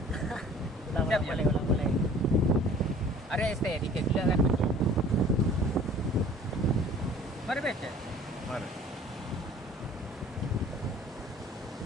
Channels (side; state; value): both; normal; correlation 0.49